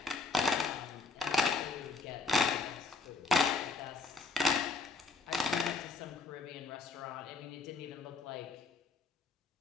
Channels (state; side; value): quieter; right; 4.1 dB